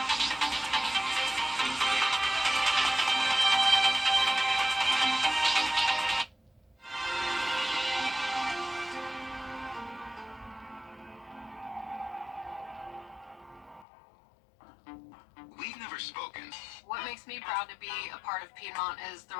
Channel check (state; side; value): drops out; right; at 13.9 s